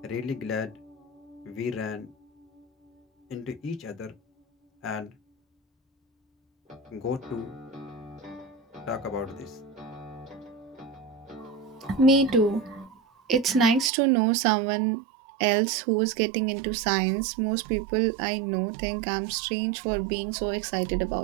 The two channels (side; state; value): left; drops out; at 13.9 s